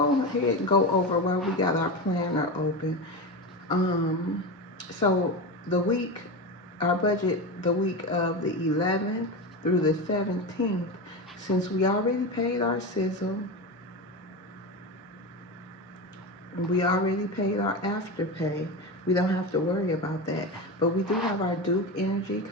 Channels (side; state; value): both; normal; correlation 0.21